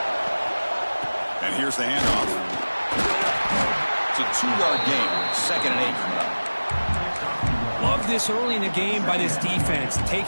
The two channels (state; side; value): inverted; both; correlation -1.00